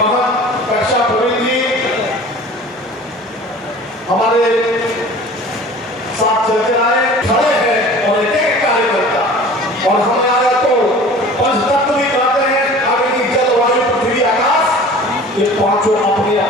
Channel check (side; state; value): both; normal; correlation 0.43